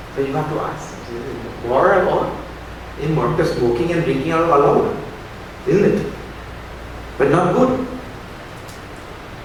So you have to ask, is it moral or immoral? Because smoking and drinking are allowed, isn't it? But not good.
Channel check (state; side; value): identical; both; correlation 1.00